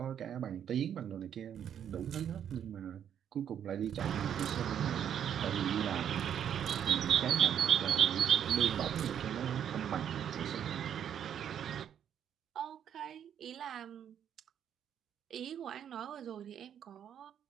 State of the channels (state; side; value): quieter; left; 9.2 dB